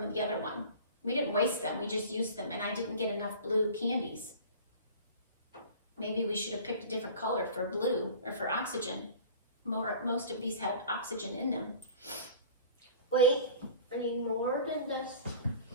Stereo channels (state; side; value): inverted; both; correlation -0.42